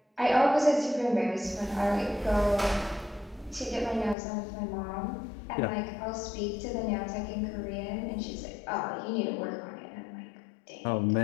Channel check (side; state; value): right; drops out; at 4.2 s